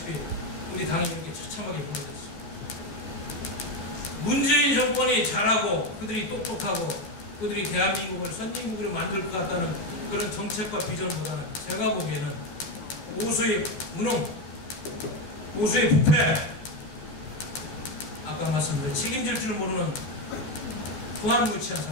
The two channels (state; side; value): late; right; 14 ms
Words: 우리 당이 이렇게 처참하게 무너졌습니다. 문재인 정권이 잘하고 그들이 똑똑하고 그들이 대한민국을 선진국으로 만들 것 같다는 그런 정책과 비전보다는 제가 보기에는 보수의 무능, 보수의 부패, 아까 말씀드린 책임질 줄 모르는 후한무치한